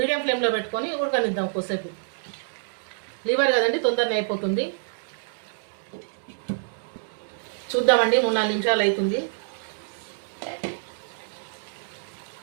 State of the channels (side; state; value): left; silent; digital silence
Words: ఫ్లేమ్లో పెట్టుకొని ఉడకనిద్దాం కొద్దిసేపు. లివర్ కదండి, తొందరనే అయిపోతుంది. చూద్దామండి, 3-4 నిమిషాలు అవుతుంది.